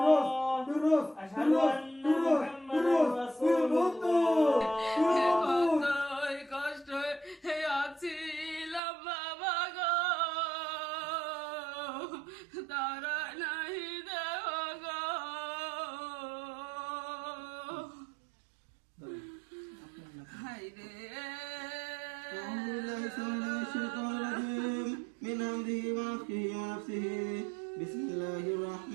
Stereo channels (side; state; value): left; drops out; at 8.8 s